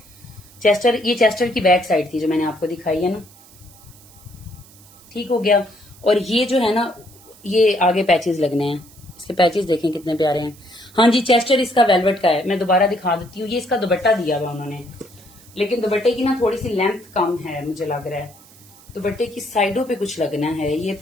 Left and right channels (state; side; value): noise; right; hiss, 24 dB below the sound